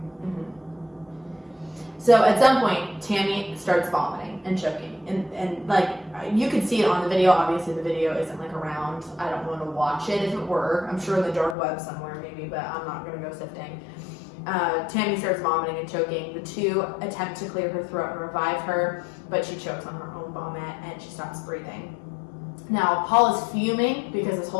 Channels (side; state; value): right; drops out; at 11.6 s